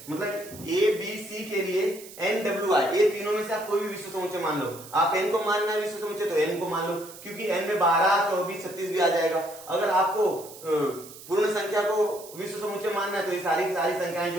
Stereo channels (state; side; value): noise; right; hiss, 17 dB below the sound